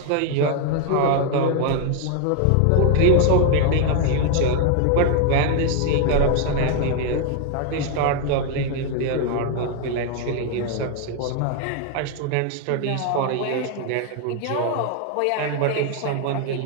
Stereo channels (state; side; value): different; both; correlation 0.00